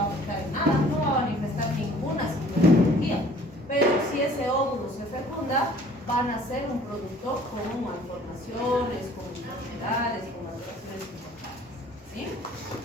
a afectar en nada, no va a manifestar ninguna sintomatología, pero si ese óvulo se fecunda, van a ser un producto con malformaciones, con enfermedades, con alteraciones importantes, ¿sí?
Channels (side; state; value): both; normal; correlation 0.53